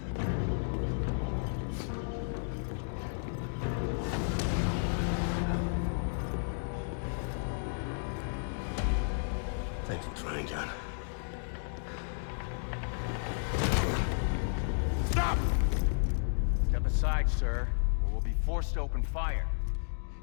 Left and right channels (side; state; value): right; silent; digital silence